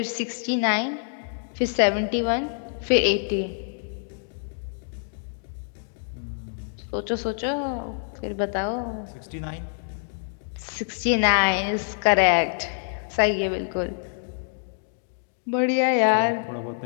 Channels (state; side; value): silent; right; digital silence